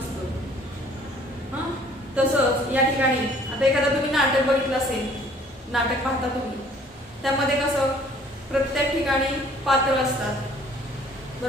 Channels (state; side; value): normal; both; correlation 0.56